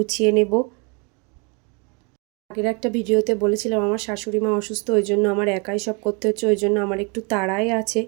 নেব। আগের একটা ভিডিওতে বলেছিলাম আমার শাশুড়ি মা অসুস্থ, ওই জন্য আমার একাই সব করতে হচ্ছে, ওই জন্য আমার একটু তাড়াই আছে।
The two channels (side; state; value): left; quieter; 32.6 dB